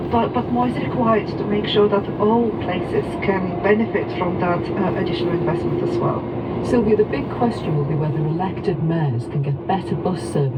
more is required to make sure that all places can benefit from that additional investment as well. Sylvia, the big question will be whether elected mayors can get better bus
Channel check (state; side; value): identical; both; correlation 1.00